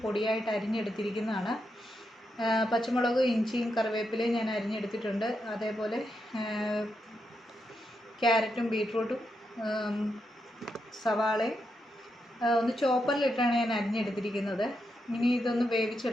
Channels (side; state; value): both; normal; correlation 0.84